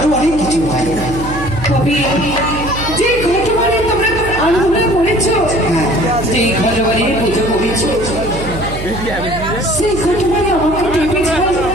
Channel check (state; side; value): noise; right; hum, 9 dB below the sound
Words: অনেক কিছু হয়। তবে যে ঘটবারে তোমরা আন্দোলন করেছো, হ্যাঁ, যে ঘটবারে পুজো করেছো, সেই ঘটবারে আমাকে ডেকেছিল।